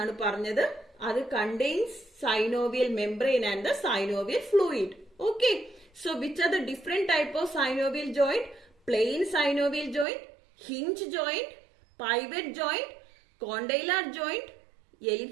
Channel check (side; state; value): left; drops out; at 10.1 s